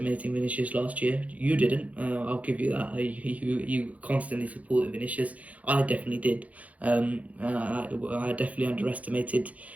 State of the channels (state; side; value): late; left; 0.070 ms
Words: Vinicius last year. You didn't. I'll give you that. You constantly supported Vinicius. I definitely did. I definitely underestimated